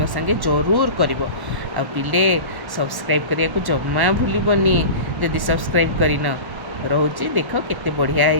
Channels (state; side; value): late; left; 1.1 ms